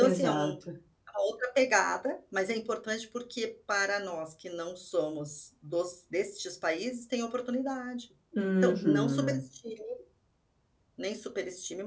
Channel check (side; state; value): both; identical; correlation 1.00